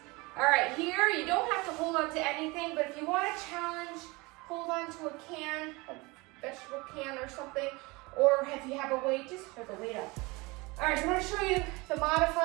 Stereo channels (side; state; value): left; quieter; 24.6 dB